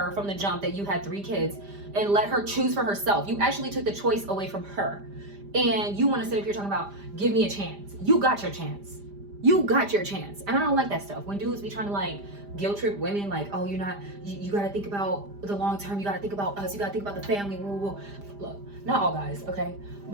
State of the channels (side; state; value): left; late; 5.0 ms